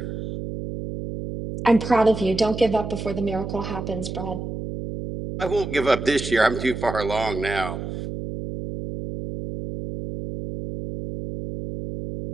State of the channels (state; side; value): noise; right; hum, 6 dB below the sound